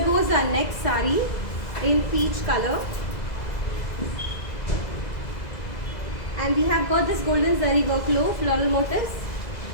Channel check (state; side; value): late; right; 2.0 ms